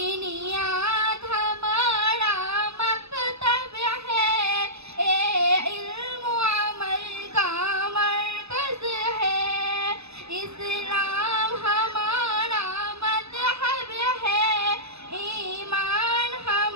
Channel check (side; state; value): left; late; 0.79 ms